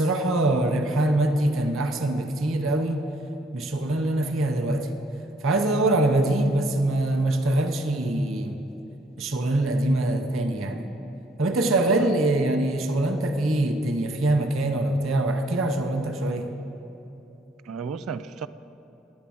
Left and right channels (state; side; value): normal; both; correlation 0.65